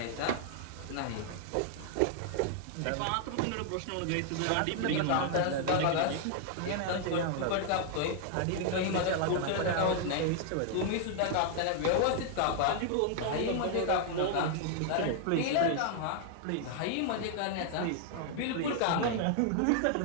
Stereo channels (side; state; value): both; different; correlation 0.00